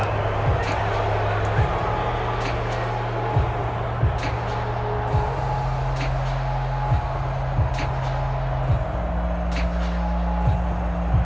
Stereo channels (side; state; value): both; identical; correlation 1.00